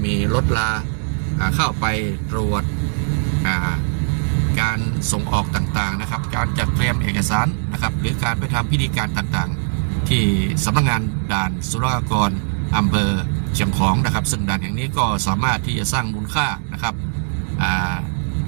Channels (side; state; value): left; silent; 66 dB below the other